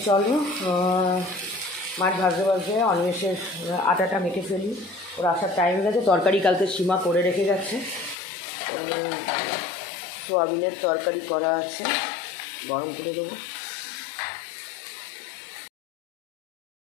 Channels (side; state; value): right; drops out; at 8.2 s